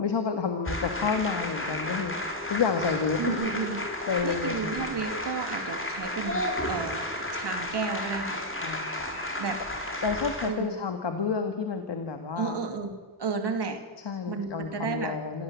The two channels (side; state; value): both; normal; correlation -0.02